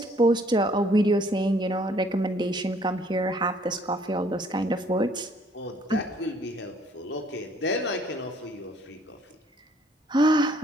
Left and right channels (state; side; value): normal; both; correlation 0.62